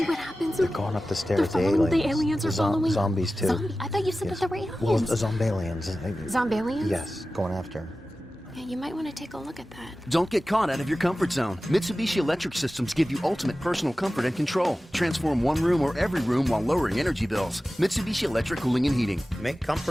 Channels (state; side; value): normal; both; correlation 0.95